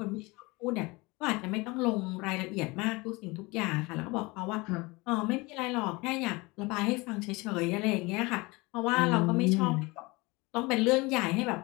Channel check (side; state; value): right; quieter; 24.3 dB